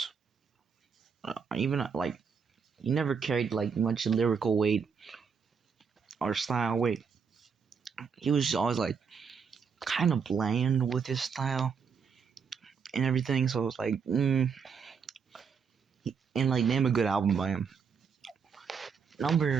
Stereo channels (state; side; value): quieter; left; 6.1 dB